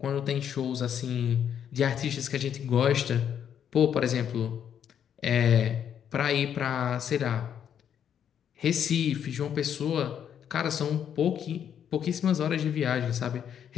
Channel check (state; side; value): quieter; right; 8.8 dB